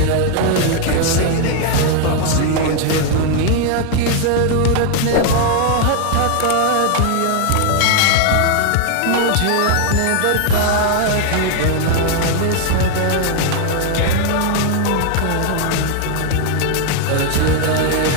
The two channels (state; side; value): different; both; correlation 0.00